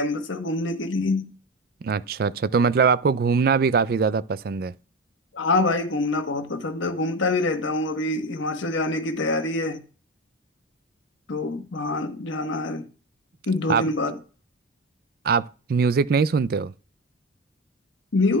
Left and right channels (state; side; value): normal; both; correlation 0.18